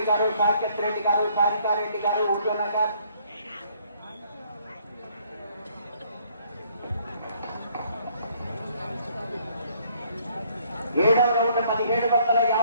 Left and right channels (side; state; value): both; inverted; correlation -0.64